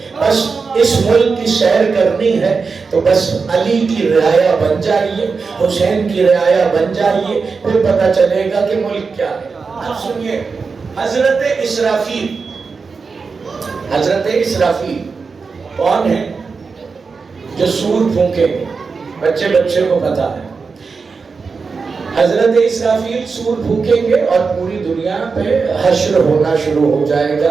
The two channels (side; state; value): left; quieter; 4.8 dB